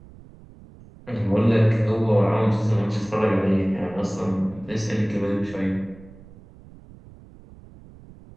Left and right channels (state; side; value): noise; right; rumble, 21 dB below the sound